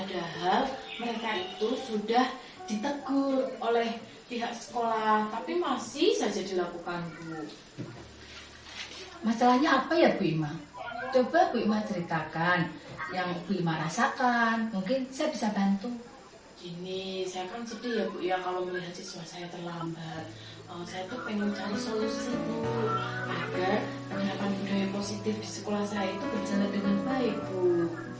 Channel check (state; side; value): identical; both; correlation 1.00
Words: mereka itu sudah ditegur oleh pihak sekolah, tapi masih saja dilakukan Bu. Masalahnya apa ya Bu Ima? Coba Bu Ima ceritakan yang Bu Ima rasakan, mungkin saya bisa bantu. Gini, saya kan sedih ya Bu ya kalau melihat siswa saya terlambat. Saya tuh pengen cari solusi Bu, agar penerapan budaya positif di sekolah saya itu berjalan dengan baik Bu.